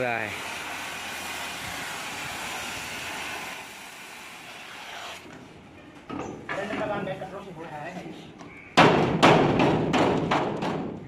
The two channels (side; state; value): both; identical; correlation 1.00